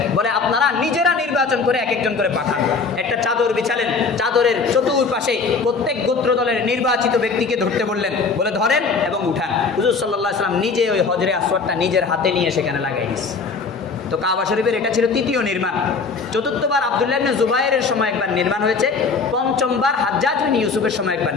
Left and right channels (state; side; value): quieter; right; 4.7 dB